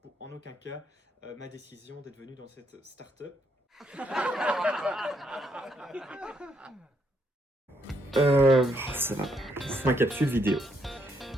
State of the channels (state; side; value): normal; both; correlation 0.74